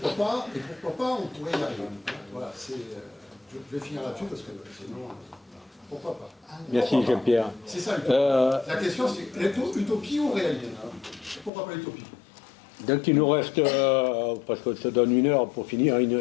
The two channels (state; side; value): drops out; right; at 11.5 s